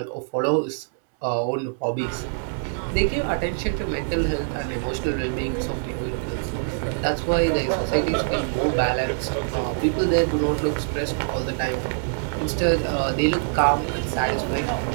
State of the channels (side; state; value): left; silent; digital silence